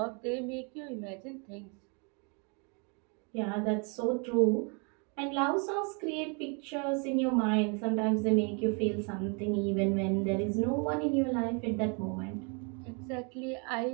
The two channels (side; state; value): left; quieter; 35.1 dB